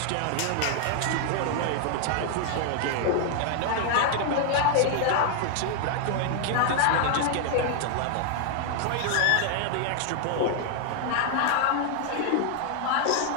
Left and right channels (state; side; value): different; both; correlation 0.00